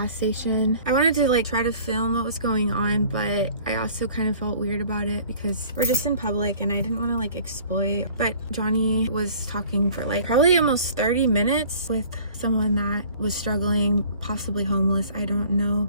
station. I wanted to like try to film what was going on, but I also kind of felt weird about it because we're just in public and I didn't want to like exploit. But Johnny was talking for like probably almost 30 minutes with someone that was struggling, possibly homeless. I don't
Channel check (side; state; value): both; inverted; correlation -0.50